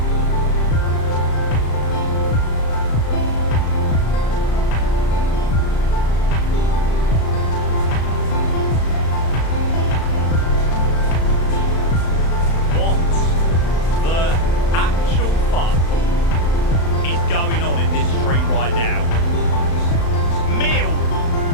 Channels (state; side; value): late; right; 35 ms